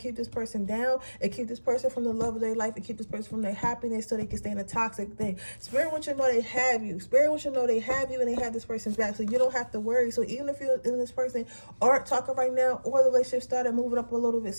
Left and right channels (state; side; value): inverted; both; correlation -1.00